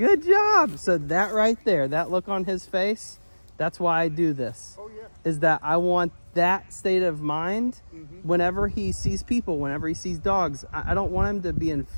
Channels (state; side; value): inverted; both; correlation -1.00